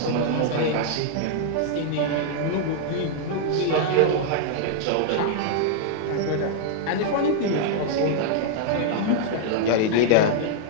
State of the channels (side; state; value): both; different; correlation -0.01